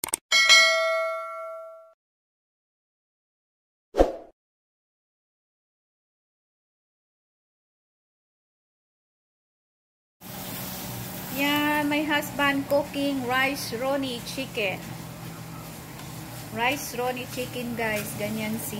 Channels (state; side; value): identical; both; correlation 1.00